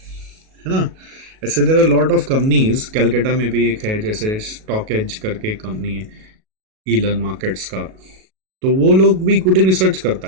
ना। ऐसे there are lot of companies, Calcutta में भी एक है जैसे स्टॉक एज करके कंपनी है ईलन मार्केट्स का, तो वो लोग भी इक्विटी रिसर्च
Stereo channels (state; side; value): late; left; 37 ms